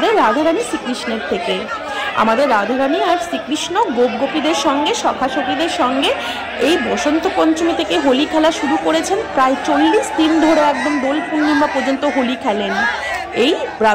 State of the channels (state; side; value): identical; both; correlation 1.00